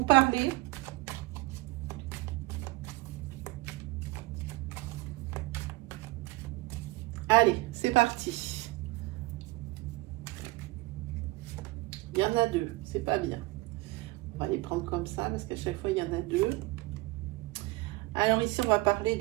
parler. Allez, c'est parti. Il y en a deux, c'est pas bien. On va les prendre comme ça parce qu'à chaque fois, il y en a deux. Alors ici, on va parler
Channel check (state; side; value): quieter; left; 21.2 dB